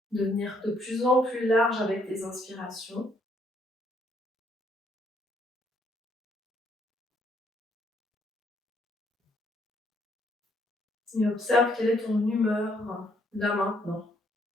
devenir de plus en plus large avec tes inspirations. Et observe quelle est ton humeur là maintenant.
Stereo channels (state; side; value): normal; both; correlation 0.69